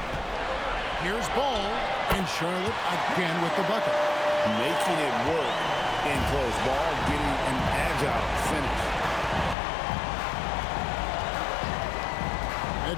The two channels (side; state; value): right; drops out; at 9.6 s